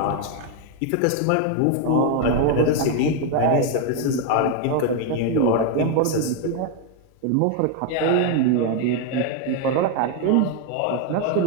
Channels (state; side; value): different; both; correlation 0.01